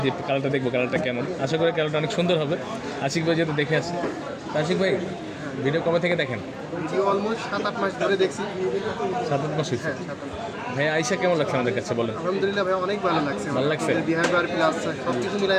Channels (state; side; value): identical; both; correlation 1.00